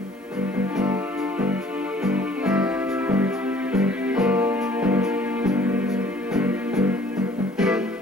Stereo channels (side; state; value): both; normal; correlation 0.55